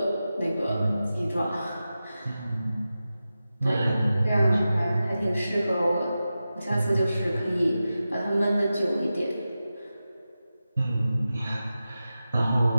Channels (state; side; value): inverted; both; correlation -0.93